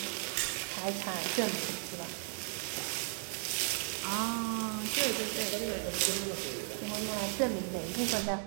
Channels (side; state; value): left; silent; 54 dB below the other